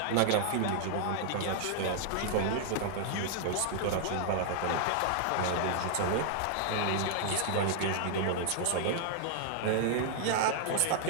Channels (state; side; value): different; both; correlation -0.01